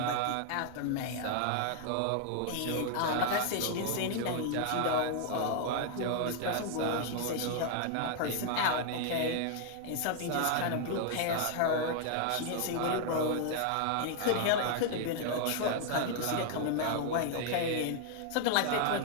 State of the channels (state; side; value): different; both; correlation 0.00